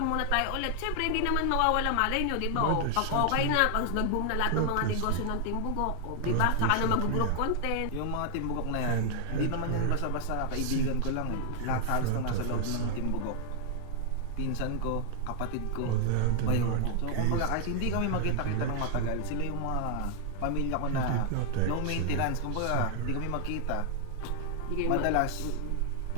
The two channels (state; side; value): different; both; correlation 0.00